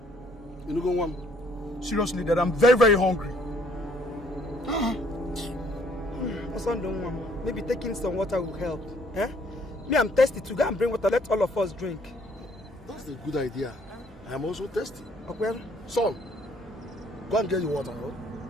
You know, go one. Seriously, Dad, I'm very, very hungry. Maybe taking some water will help. Eh? Me, I'm thirsty to go and bring water. Let all of us drink. That's a good idea. I am also thirsty. Okay. Son, go and get your water. Huh?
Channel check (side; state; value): both; normal; correlation 0.63